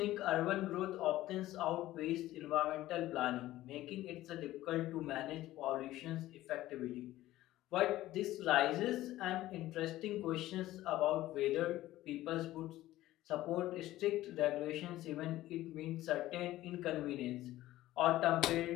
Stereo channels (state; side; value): quieter; right; 15.5 dB